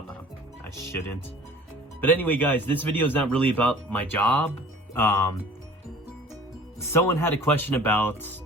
I shouldn't. But anyway, guys, this video is not really about my job. Someone had a question about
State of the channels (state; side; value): normal; both; correlation 0.47